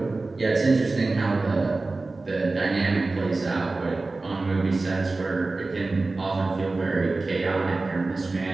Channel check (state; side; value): quieter; left; 3.4 dB